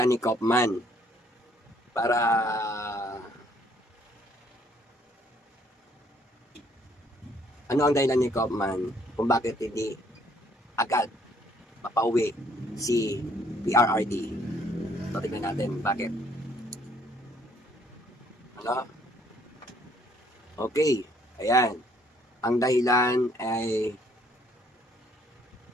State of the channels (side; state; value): both; normal; correlation 0.64